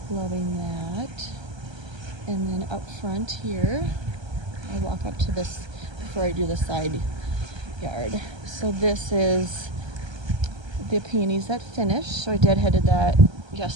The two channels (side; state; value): left; late; 1.3 ms